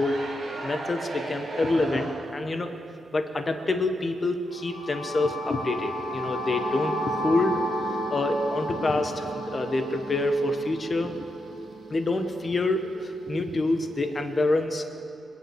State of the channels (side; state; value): both; normal; correlation 0.84